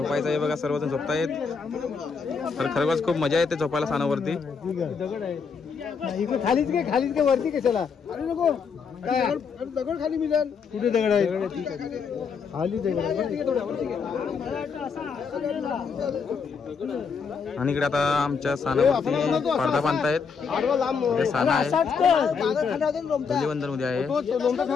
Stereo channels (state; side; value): quieter; right; 5.7 dB